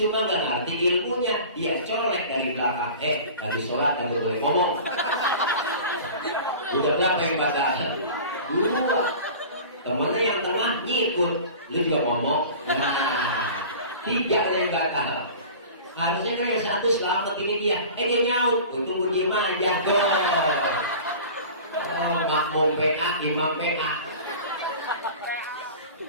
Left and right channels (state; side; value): inverted; both; correlation -0.38